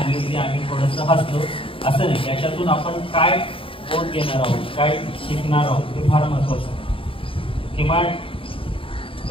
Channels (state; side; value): late; right; 0.26 ms